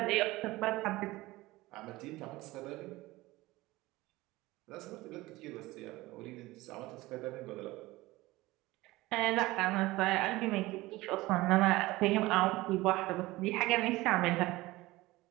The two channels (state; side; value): quieter; left; 19.5 dB